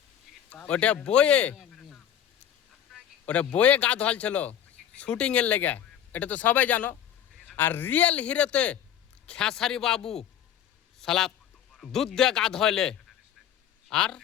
ওটা বয়ে গা ধোয়াল ছিল শুটিংয়ের লেগে, এটা তো সবাই জানো। আর রিয়েল হিরোতে খেসারি বাবু সালা দুধ দিয়ে গা ধোয়ালে। আর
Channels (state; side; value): quieter; right; 9.9 dB